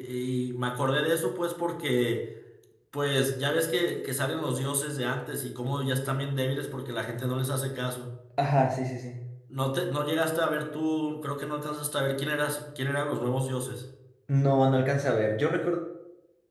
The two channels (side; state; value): both; identical; correlation 1.00